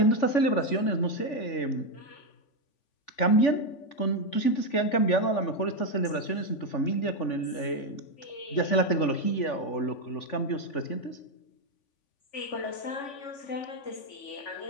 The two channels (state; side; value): late; right; 3.5 ms